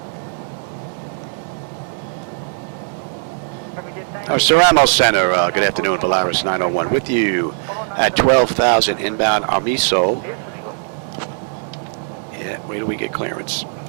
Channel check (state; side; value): silent; left; digital silence